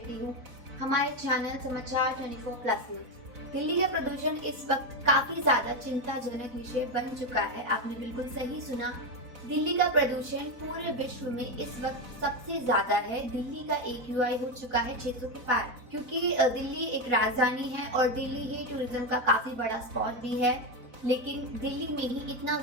हूँ हमारे चैनल समाचार 24+ में। दिल्ली का प्रदूषण इस वक्त काफी ज्यादा चिंताजनक विषय बन चुका है। आपने बिल्कुल सही सुना, दिल्ली का प्रदूषण पूरे विश्व में इस वक्त सबसे ज्यादा है। दिल्ली का AQI हो चुका है 600 के पार, क्योंकि दिल्ली एक राजधानी है और दिल्ली ही टूरिज्म का काफी बड़ा स्पॉट भी है। लेकिन दिल्ली में ही इतना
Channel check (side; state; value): left; late; 4.0 ms